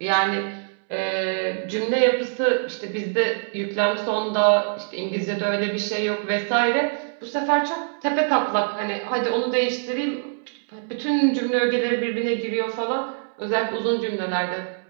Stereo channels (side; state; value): left; silent; 63 dB below the other